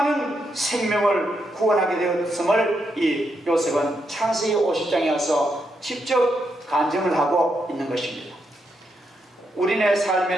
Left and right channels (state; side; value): normal; both; correlation 0.81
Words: 생명을 구원하게 되었음을 이 요셉은 창세기 50장에 와서 직접 간증을 하고 있는 것입니다. 우리네